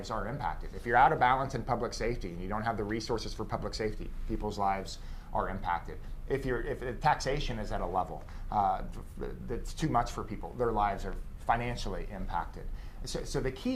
are impacted. If you're out of balance in public safety and you don't have the resources for public safety, people's lives are impacted. If the taxation is at a level that's too much for people, their lives are financially impacted. So the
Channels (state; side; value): identical; both; correlation 1.00